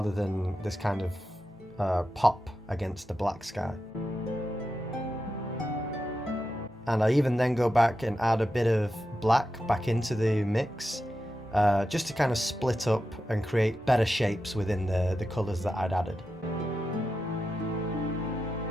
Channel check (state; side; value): normal; both; correlation 0.90